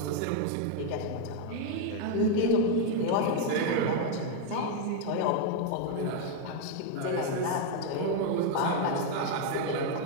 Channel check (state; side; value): different; both; correlation 0.00